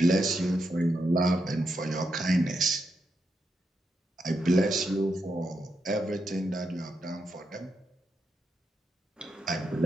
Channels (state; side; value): normal; both; correlation 0.83